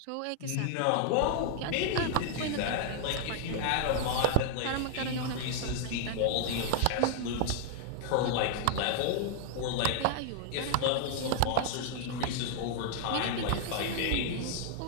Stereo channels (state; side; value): different; both; correlation 0.00